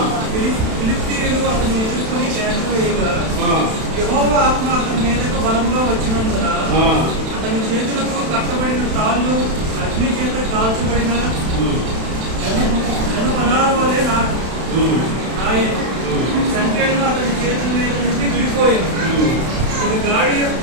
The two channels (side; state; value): left; late; 32 ms